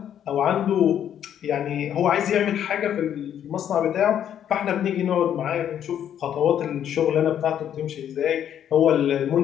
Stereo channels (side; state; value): right; quieter; 9.8 dB